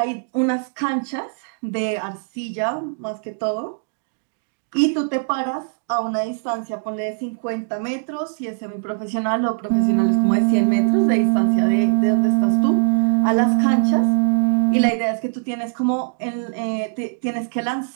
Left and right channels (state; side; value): silent; left; digital silence